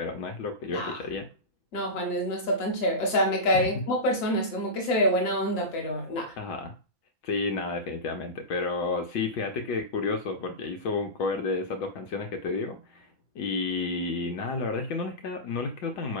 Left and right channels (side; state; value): right; late; 6.4 ms